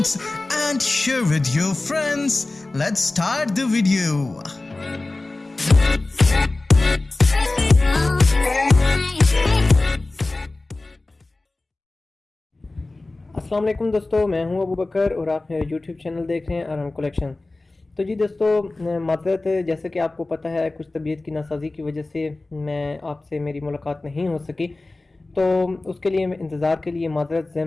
and share with your friends. Let's start the video. अस्सलाम वालेकुम दोस्तों, मैं हूं अबू बकर और आप मेरे यूट्यूब चैनल देख रहे हैं आराम कलेक्शन। तो जी दोस्तों, माज़रत, जैसे कि आपको पता है कुछ तबीयत की नासाजी की वजह से मैं आपसे मेरी मुलाकात नहीं हो सकी, तो उसके लिए इंतज़ार के लिए माज़रत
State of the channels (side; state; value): right; quieter; 3.1 dB